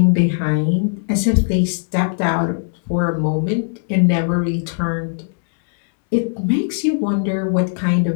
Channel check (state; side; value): silent; right; digital silence